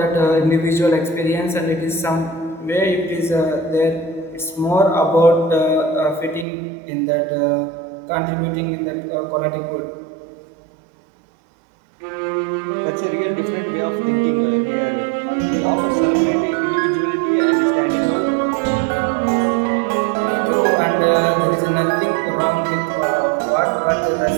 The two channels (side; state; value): left; drops out; at 6.5 s